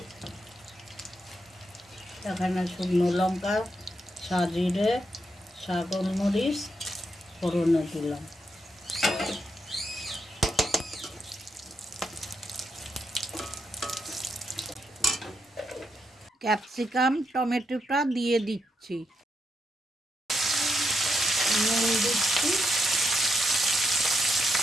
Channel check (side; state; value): both; normal; correlation 0.82